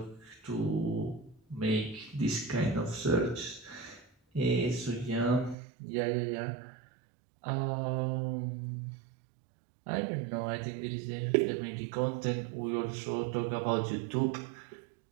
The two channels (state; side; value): drops out; left; at 5.6 s